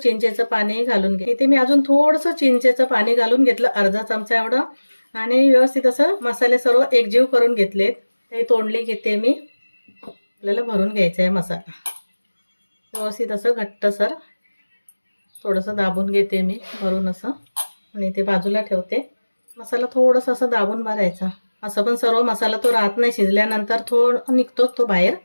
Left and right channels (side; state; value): both; inverted; correlation -1.00